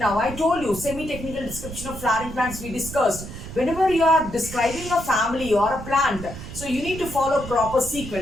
I told you, semi-technical description of flowering plants we discussed. Whenever you are describing a family or a plant, so you need to follow proper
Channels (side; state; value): right; noise; rumble, 11 dB below the sound